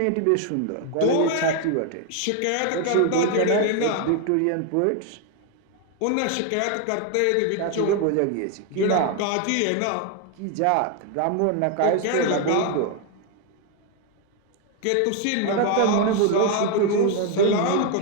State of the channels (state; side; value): different; both; correlation 0.01